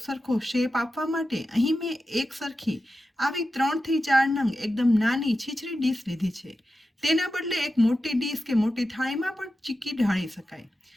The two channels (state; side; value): normal; both; correlation 0.92